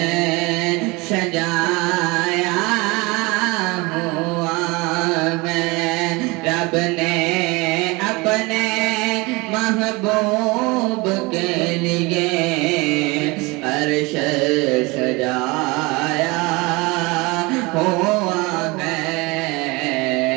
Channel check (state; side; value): quieter; left; 24.9 dB